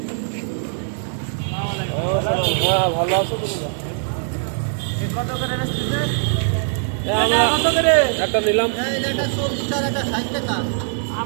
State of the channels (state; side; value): silent; left; digital silence